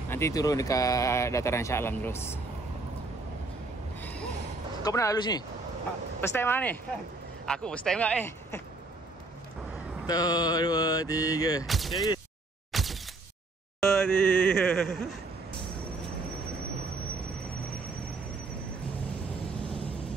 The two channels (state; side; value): quieter; left; 3.2 dB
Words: Nanti turun dekat dataran Shah Alam terus. Kau pernah lalu sini? First time mana ni? Aku first time tak ni. 1, 2, 3. Sekali. 2, 3.